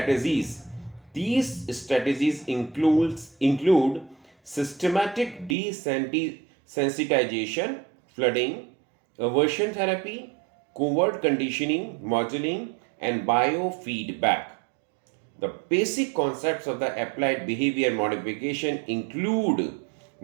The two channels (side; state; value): left; drops out; at 5.6 s